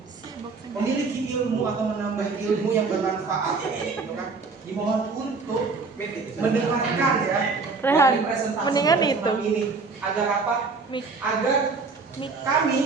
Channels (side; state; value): left; quieter; 4.3 dB